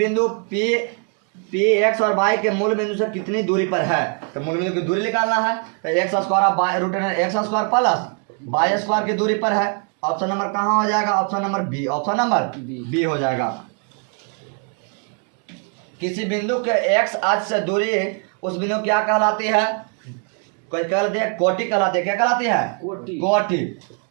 P x और y के मूल बिंदु से कितनी दूरी पर है, तो मूल बिंदु की दूरी निकालना है। तो x square root x square plus y square की दूरी पर है। ऑप्शन नंबर कहाँ हो जाएगा? Option number B, option number B हो जाएगा। किसी बिंदु के x अक्ष से दूरी उस बिंदु क्या कहलाती है? कोई कहलाती है कोटि कहलाती है। क्या कहलाती है? कोटि।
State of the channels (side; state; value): left; quieter; 39.8 dB